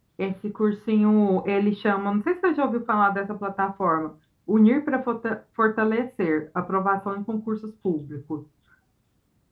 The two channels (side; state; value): both; identical; correlation 1.00